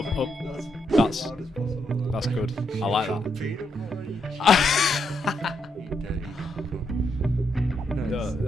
That's good. I like that. No,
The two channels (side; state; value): both; normal; correlation 0.79